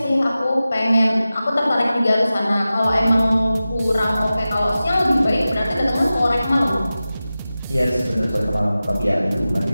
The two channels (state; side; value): inverted; both; correlation -0.95